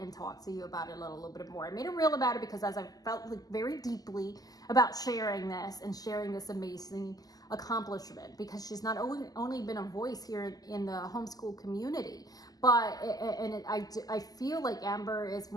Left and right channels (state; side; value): late; right; 0.18 ms